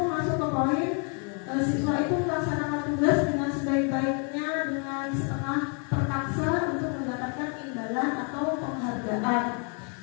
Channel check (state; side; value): quieter; right; 38.8 dB